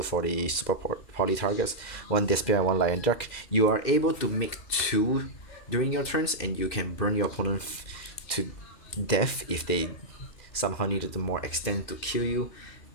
for the super poly targets, 1 Despia and 1 Lion Dark. You are able to make 2 during your turns, and you can burn your opponent to death if they somehow needed to more extend to kill you.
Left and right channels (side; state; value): right; late; 2.6 ms